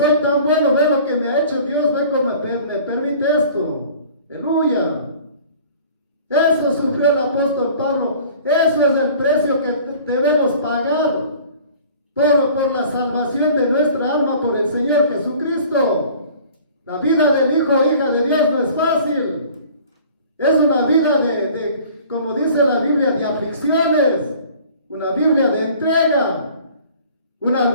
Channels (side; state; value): both; inverted; correlation -0.48